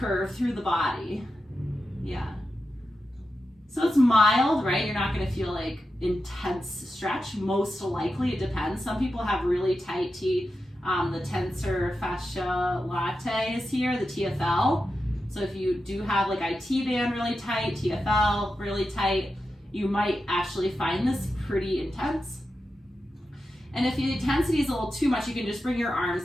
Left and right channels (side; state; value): both; normal; correlation 0.90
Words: through the body. Yeah. So it's mild, right? You're not going to feel like intense stretch. Most likely, it depends. Some people have really tight T. The tensor fascia latae is here, the TFL. So if you do have like IT band really tight, TFL really tight, you might actually find this pretty intense. And if the intensity is a little too much, you can just bring your